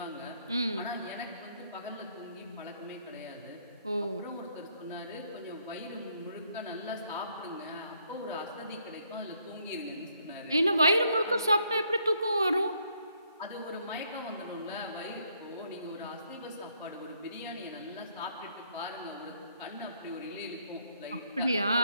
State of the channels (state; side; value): inverted; both; correlation -0.69